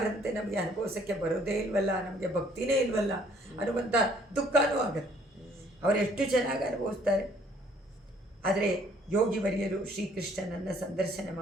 ನಮಗೆ ಅನುಭವಿಸೋಕ್ಕೆ ಬರೋದೇ ಇಲ್ವಲ್ಲ, ನಮಗೆ ಭಕ್ತಿನೇ ಇಲ್ವಲ್ಲ ಅನ್ನುವಂಥ ದುಃಖನೂ ಆಗುತ್ತೆ. ಅವರು ಎಷ್ಟು ಚೆನ್ನಾಗಿ ಅನುಭವಿಸ್ತಾರೆ. ಆದರೆ ಯೋಗಿ ವರಿಯರು ಶ್ರೀಕೃಷ್ಣನನ್ನು ಸಂದರ್ಶನ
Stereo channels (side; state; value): both; normal; correlation 0.61